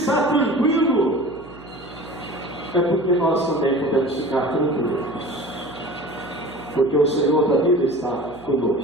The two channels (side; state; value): right; noise; hum, 22 dB below the sound